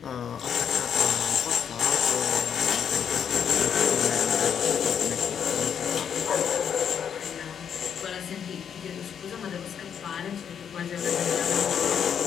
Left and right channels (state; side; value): quieter; right; 8.0 dB